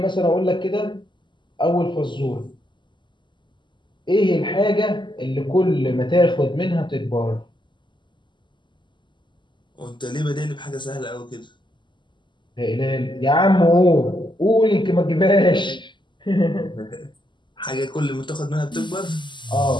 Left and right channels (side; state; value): right; late; 0.22 ms